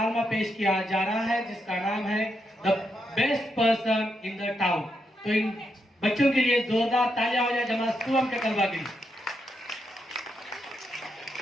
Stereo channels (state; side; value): normal; both; correlation 0.82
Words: पेश किया जा रहा है जिसका नाम है the best person in the town. तो इन बच्चों के लिए जोरदार तालियां हो जाए जमात सुवम के तलबा के लिए।